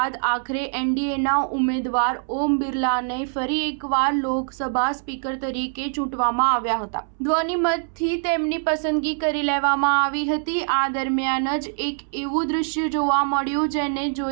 આખરે એનડીએના ઉમેદવાર ઓમ બિરલાને ફરી એકવાર લોકસભા સ્પીકર તરીકે ચૂંટવામાં આવ્યા હતા. ધ્વનિમતથી તેમની પસંદગી કરી લેવામાં આવી હતી. આ દરમિયાન જ એક એવું દૃશ્ય જોવા મળ્યું જેને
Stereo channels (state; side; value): silent; left; 63 dB below the other